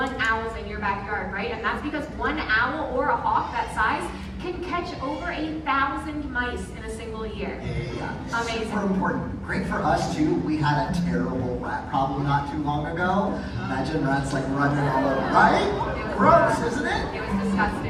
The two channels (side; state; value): both; identical; correlation 1.00